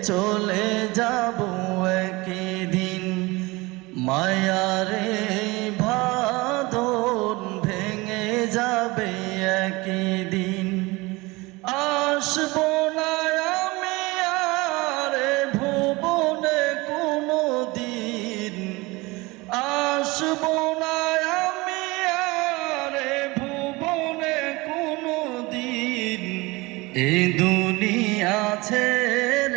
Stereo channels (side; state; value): left; quieter; 23.1 dB